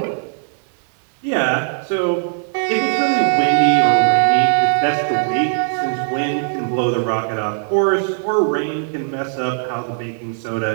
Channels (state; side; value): silent; left; 67 dB below the other